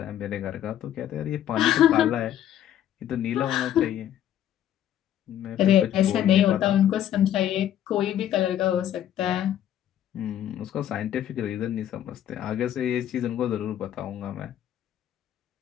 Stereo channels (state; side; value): quieter; right; 11.0 dB